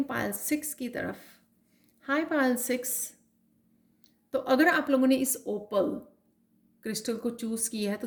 पायल 6 की तरफ। हाय पायल 6। तो अगर आप लोगों ने इस ओपल क्रिस्टल को चूज़ किया है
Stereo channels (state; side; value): identical; both; correlation 1.00